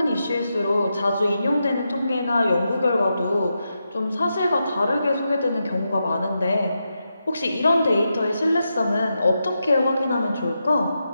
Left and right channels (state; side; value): inverted; both; correlation -0.87